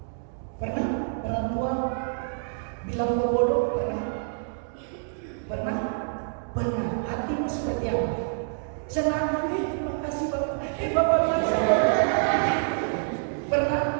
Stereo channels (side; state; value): left; silent; digital silence